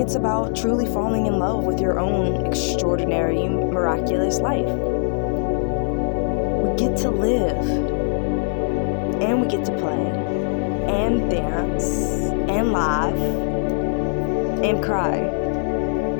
about truly falling in love with your own extraordinary, miraculous life. We get to live, and we get to play, and dance, and laugh, and cry.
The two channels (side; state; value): right; silent; 62 dB below the other